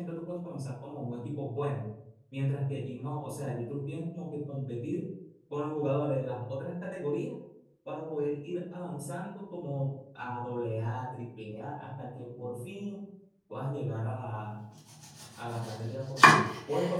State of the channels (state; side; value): identical; both; correlation 1.00